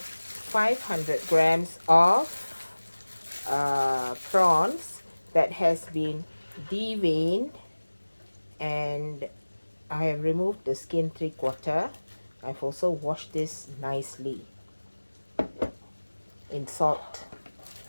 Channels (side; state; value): both; inverted; correlation -1.00